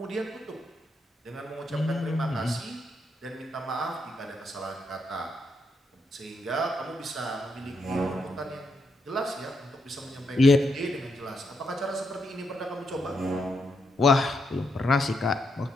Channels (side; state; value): both; normal; correlation 0.80